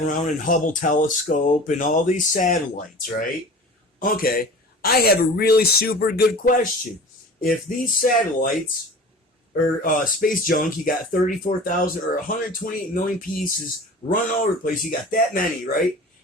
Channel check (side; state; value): both; normal; correlation 0.39